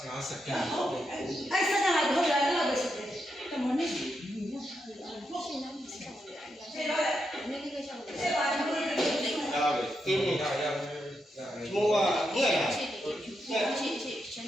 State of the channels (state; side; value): normal; both; correlation 0.84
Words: စက္ကန့် ဟုတ်တယ်အဲ့စကားလိုက်ဟုတ်တယ်အဲ့လိုပဲရှိတယ်တမနစ်ဒီညော ရှင်းနေပြီဆက်ပါလေ ဆေးတော့ နည်းနည်းရှောင်းတယ် ဆေးပါတော့ ဒါပဲကင်းနေတာရမိုးကငဲ့လာ ရှင်းရှင်း